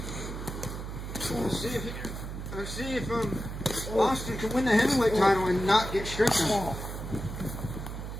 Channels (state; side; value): noise; right; hum, 7 dB below the sound